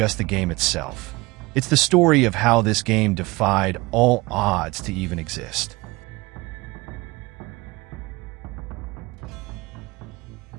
the game itself. It's the story of how this game defied all odds to even exist.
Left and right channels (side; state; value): left; quieter; 22.7 dB